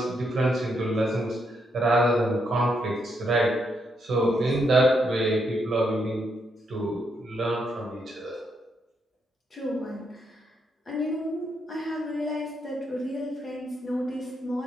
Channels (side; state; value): both; normal; correlation 0.78